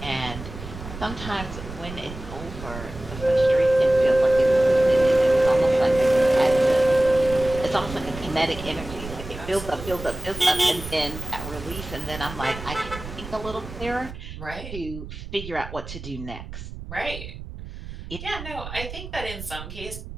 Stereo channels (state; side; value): noise; right; rumble, 11 dB below the sound